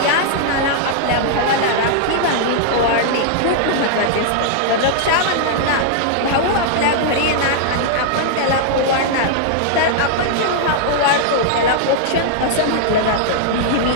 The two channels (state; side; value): different; both; correlation -0.01